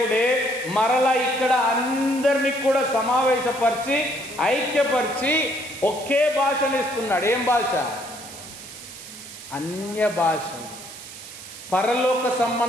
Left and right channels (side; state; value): right; noise; hiss, 14 dB below the sound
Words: మరలా ఇక్కడ అందరినీ కూడా సమావేశపరిచి ఐక్యపరిచి ఒకే భాషను ఇస్తున్నాడు. ఏం భాష? అన్య భాషలు, పరలోక